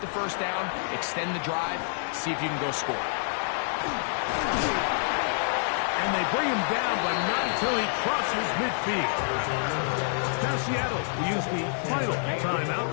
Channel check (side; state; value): right; silent; digital silence